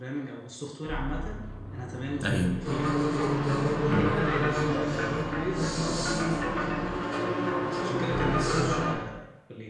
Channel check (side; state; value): both; identical; correlation 1.00